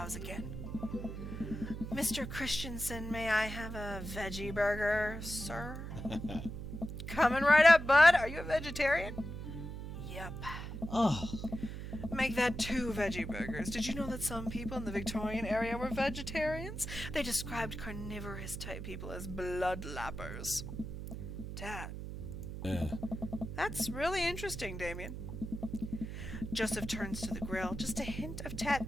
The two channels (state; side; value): noise; right; hum, 7 dB below the sound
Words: again. Mr. Christensen, may I have a veggie burger, sir? Coming right up, bud. Are you a vegetarian? Yep. Oh, Make that 2 veggie burgers. Did you know that some people in the Victorian area were vegetarians? They described carnivorous type people as bloodlappers. Dad. That's really interesting, Damien. Joseph turns to the grill. Just a hint of